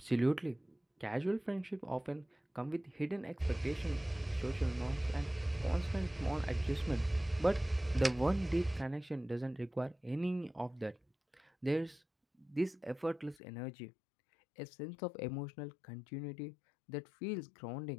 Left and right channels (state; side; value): drops out; right; at 13.4 s